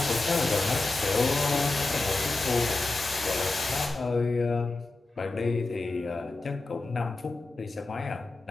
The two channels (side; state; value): right; quieter; 3.3 dB